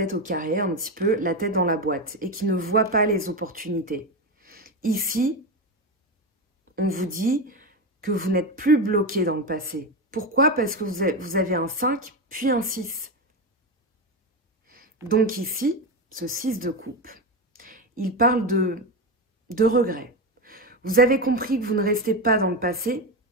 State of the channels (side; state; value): both; normal; correlation 0.15